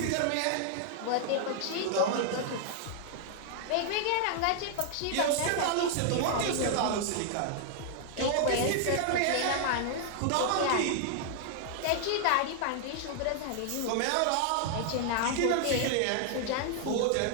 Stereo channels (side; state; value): both; different; correlation 0.00